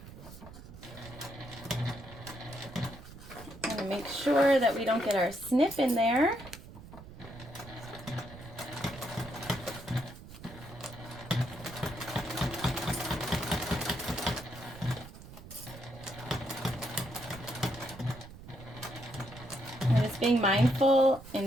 I'm going to make sure that we don't get our snip in there. I'm just being mindful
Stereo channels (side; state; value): right; noise; rumble, 16 dB below the sound